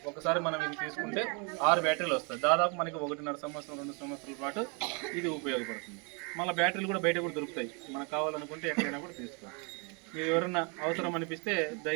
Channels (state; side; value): quieter; left; 33.9 dB